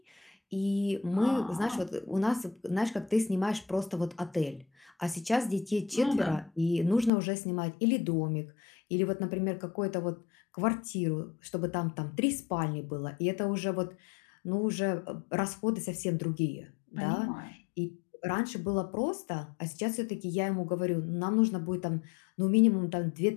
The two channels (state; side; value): drops out; right; at 7.1 s